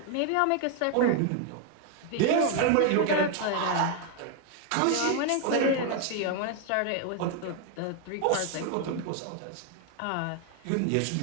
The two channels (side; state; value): both; different; correlation 0.00